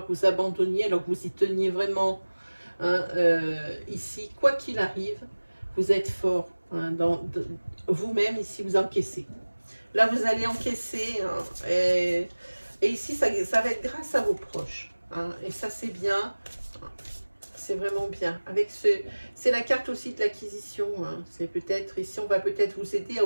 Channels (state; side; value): inverted; both; correlation -1.00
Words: que vous abandonniez alors que vous y teniez vraiment. Hein, ici, quoi qu'il arrive, vous êtes fort. Hein, vous-même, ici, vous encaissez. Là, vous allez encaisser. Hein, et ici, ça va être grâce à vos proches. Hein, et ça, c'est bien. C'est vraiment bien. C'est la carte aussi de l'acquisition. Hein, c'est peut-être, ici, on va peut-être vous aider à